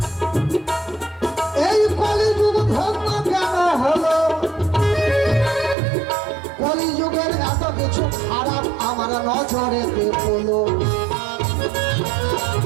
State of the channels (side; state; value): left; drops out; at 5.8 s